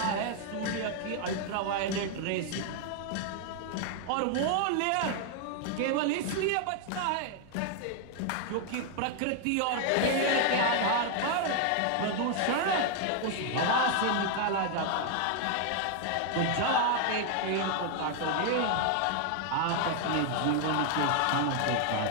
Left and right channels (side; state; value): both; different; correlation 0.00